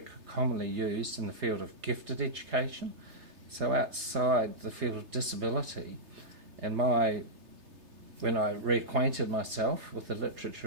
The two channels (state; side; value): late; left; 3.3 ms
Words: commonly used in the field of gifted education. So outside the field of disability, and when I reacquainted myself with the